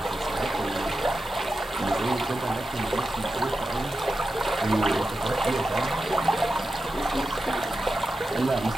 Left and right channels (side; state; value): both; normal; correlation 0.90